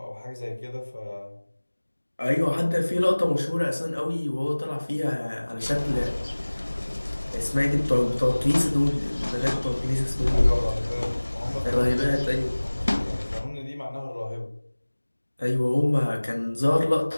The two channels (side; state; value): both; inverted; correlation -1.00